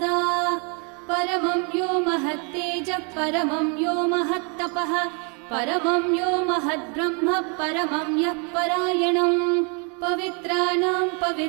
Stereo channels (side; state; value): left; quieter; 35.9 dB